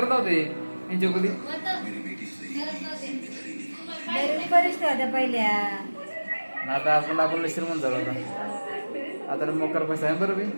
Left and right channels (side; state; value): both; inverted; correlation -1.00